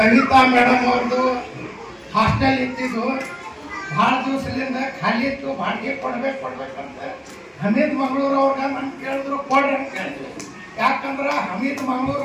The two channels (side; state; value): both; identical; correlation 1.00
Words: ಮೇಡಮ್ ಅವ್ರದ್ದು ಹಾಸ್ಟೆಲ್ ಇತ್ತಿದ್ದು ಭಾಳ ದಿವಸದಿಂದ ಖಾಲಿ ಇತ್ತು, ಬಾಡಿಗೆ ಕೊಡ್ಬೇಕಂತ ಹಮೀದ್ ಮಂಗಳೂರು ಅವ್ರಿಗೆ ನಾನು ಕೇಳಿದ್ರು ಕೊಡ್ರಿ ಅಂತ ಹೇಳಿದ್ರು. ಯಾಕಂದ್ರೆ ಹಮೀದ್